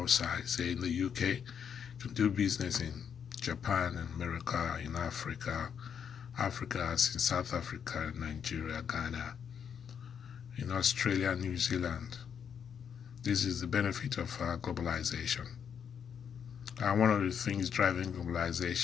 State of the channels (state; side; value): quieter; right; 7.6 dB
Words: say in the UK, you can do business in Japan, in America, in Africa, as in South Africa, Nigeria, Ghana, in Australia, New Zealand. This is the benefit of globalization. And one of the things driving